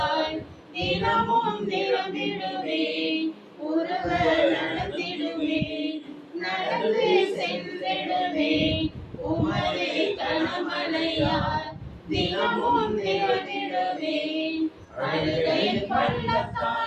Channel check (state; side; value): identical; both; correlation 1.00